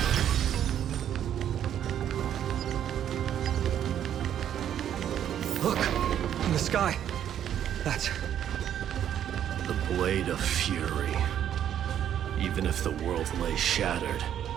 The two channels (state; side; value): quieter; left; 10.1 dB